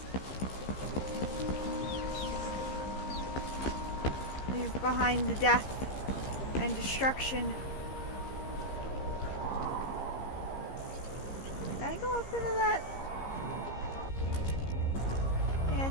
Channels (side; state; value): right; late; 15 ms